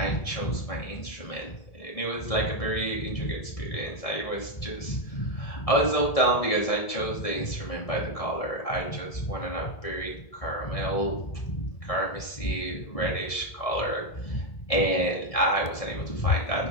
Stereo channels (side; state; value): right; late; 1.7 ms